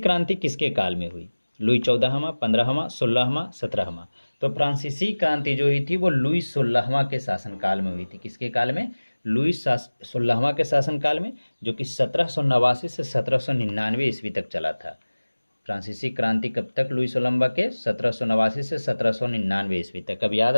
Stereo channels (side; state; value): both; inverted; correlation -1.00